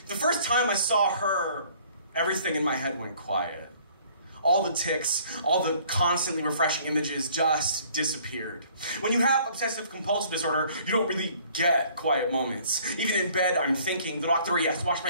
The first time I saw her, everything in my head went quiet. All the tics, all the constantly refreshing images just disappeared. When you have obsessive compulsive disorder, you don't really get quiet moments. Even in bed, I'm thinking, the doctor, yes, wash my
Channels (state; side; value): inverted; both; correlation -0.57